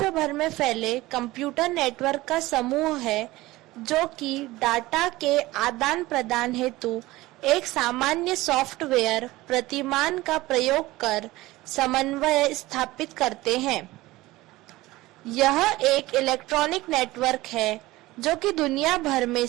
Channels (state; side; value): quieter; left; 18.7 dB